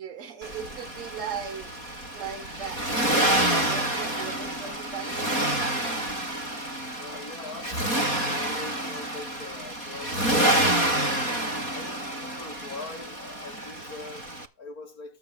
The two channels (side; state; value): right; late; 4.2 ms